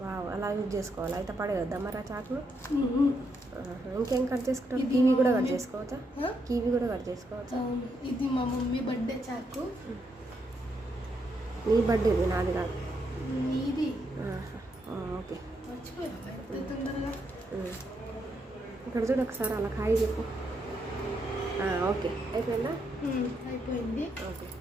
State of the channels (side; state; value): both; normal; correlation 0.79